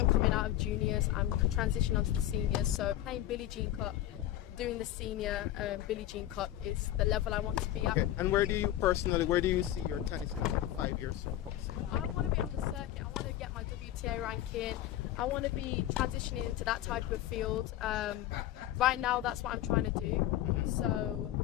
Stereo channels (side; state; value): right; quieter; 13.3 dB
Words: coming out of juniors. I'm transitioning onto the seniors. So playing Billie Jean Cup, doing the senior Billie Jean Cup is the level I want to be at. Okay. And where do you see your tennis in about 5 years from now? I want to be on the circuit. I want to get my WTA ranking. I want to be transitioning into that type of field. Right now, that's what I'm trying to do.